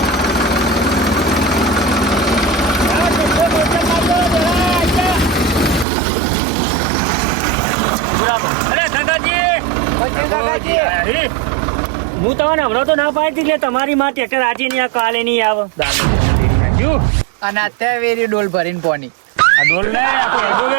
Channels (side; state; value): left; drops out; at 5.9 s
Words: હું તમને હમણાં તો ના પાડી એટલે તમારી માં ટ્રેક્ટર આજે નહીં આવે કાલે નહીં આવે અને અત્યારે વેરી ડોલ ભરીને પોની